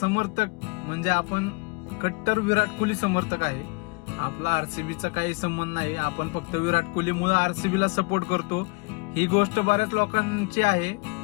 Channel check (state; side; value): quieter; right; 30.6 dB